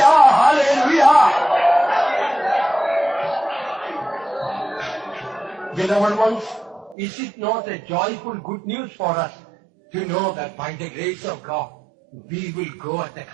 hallelujah. Beloved ones, is it not a joyful good news for us to know that by the grace of God, we will go at the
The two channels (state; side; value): drops out; left; at 7.0 s